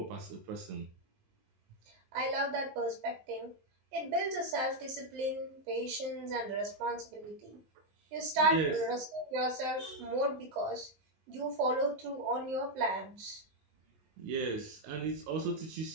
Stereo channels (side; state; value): left; late; 19 ms